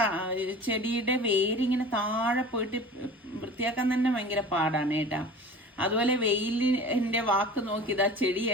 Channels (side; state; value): both; normal; correlation 0.39